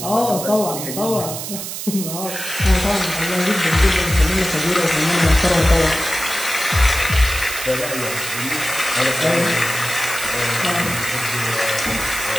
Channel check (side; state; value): right; noise; hiss, 7 dB below the sound